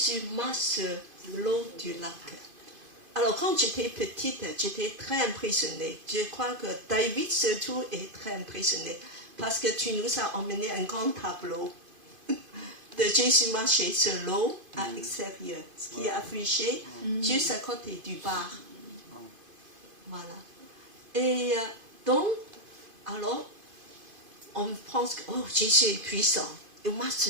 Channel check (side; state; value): left; late; 2.5 ms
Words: marche sur l'eau du lac. Alors quand j'étais petite, j'étais très impressionnée. Je crois que David surtout est très impressionné parce que tu nous as emmené un grand tableau de Jésus marcher sur l'eau à l'extérieur, ce qui est affiché juste à côté du bar. Voilà. Et donc, alors, on pense que Jésus est puissant. Il marche